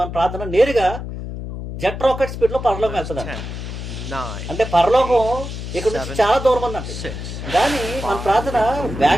ప్రార్థన నేరుగా జెట్ రాకెట్ స్పీడ్ లో పరలోకం వెళ్తుందండి. అంటే పరలోకం ఇక్కడ నుంచి చాలా దూరం ఉందండి, కానీ మన ప్రార్థన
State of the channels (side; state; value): left; noise; hum, 7 dB below the sound